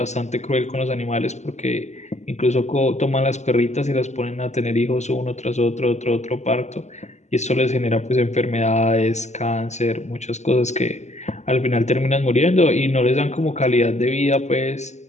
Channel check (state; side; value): late; right; 0.33 ms